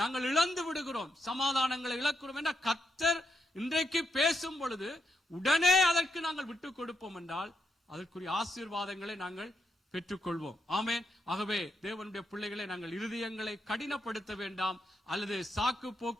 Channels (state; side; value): normal; both; correlation 0.80